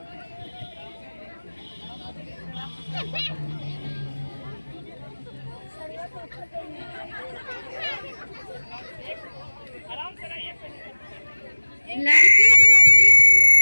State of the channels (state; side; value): inverted; both; correlation -1.00